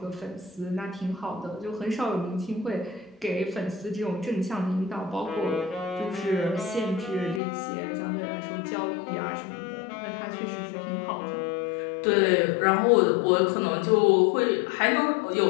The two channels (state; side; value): drops out; right; at 7.4 s